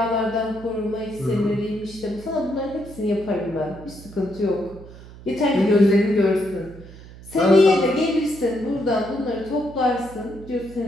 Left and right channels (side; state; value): right; noise; hum, 18 dB below the sound